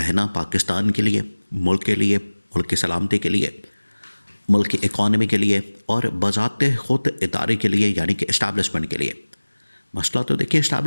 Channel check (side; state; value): both; inverted; correlation -1.00